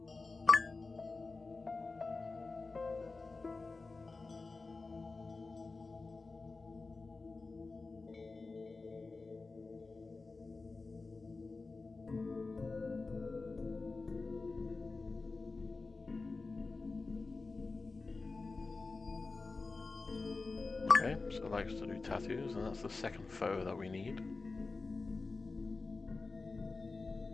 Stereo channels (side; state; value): right; quieter; 3.8 dB